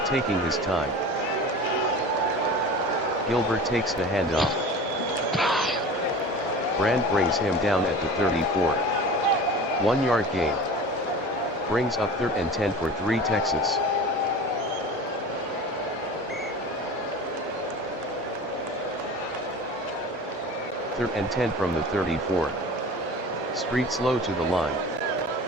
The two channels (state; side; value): normal; both; correlation 0.37